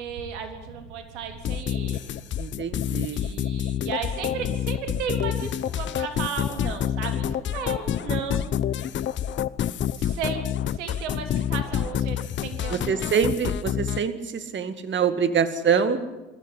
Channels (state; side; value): normal; both; correlation 0.34